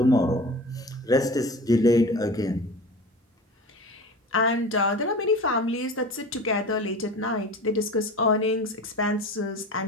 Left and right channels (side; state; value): both; normal; correlation 0.36